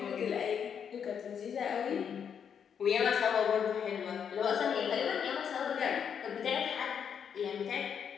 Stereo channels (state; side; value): quieter; right; 7.6 dB